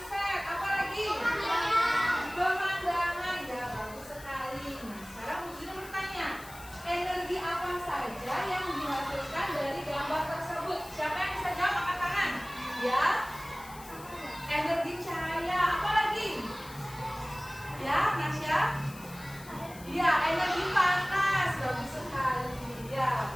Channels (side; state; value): left; noise; hiss, 18 dB below the sound